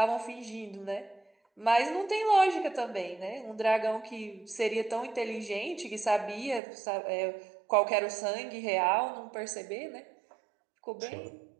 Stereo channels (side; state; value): left; drops out; at 6.6 s